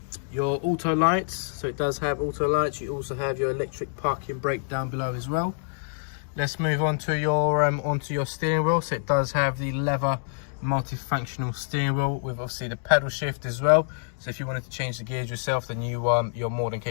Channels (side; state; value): right; silent; digital silence